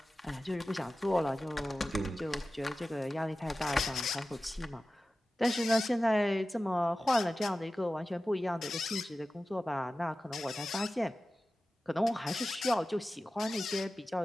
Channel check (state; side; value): normal; both; correlation 0.95